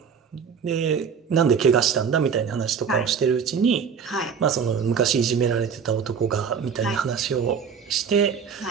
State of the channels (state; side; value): quieter; left; 6.7 dB